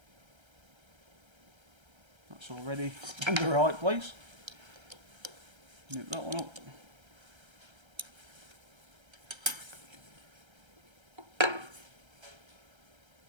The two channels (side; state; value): left; late; 1.3 ms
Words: That's already in the right place. Nip that one up.